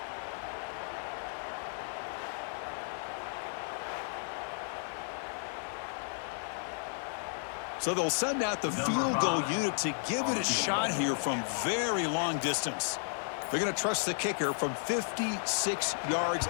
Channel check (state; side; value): silent; right; digital silence